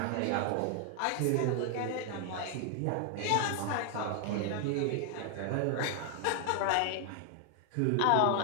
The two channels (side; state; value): both; different; correlation 0.00